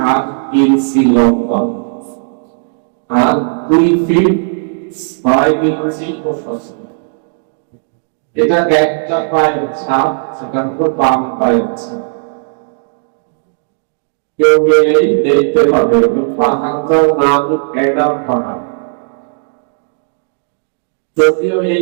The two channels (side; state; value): left; silent; digital silence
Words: ইঞ্চি লম্বা আর 2 ফিট 6 ইঞ্চি প্রশস্ত। এটা একটা পায়ের ছাপ, সেটা হলো বাম পায়ের ছাপ। কেউ গেলেই দেখতে পাবে পাহাড়টার নাম অ্যাডাম পাহাড়। যদিও